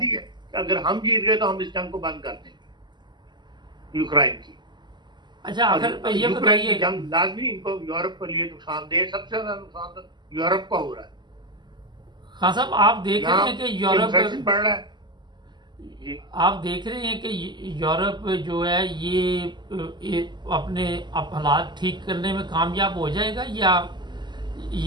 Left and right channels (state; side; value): late; left; 0.21 ms